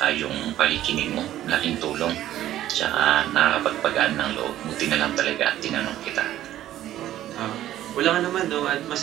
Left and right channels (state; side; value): quieter; left; 13.0 dB